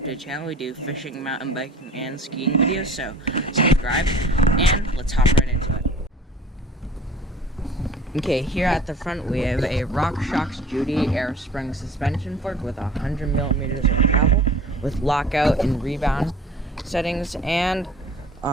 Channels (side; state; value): both; normal; correlation 0.46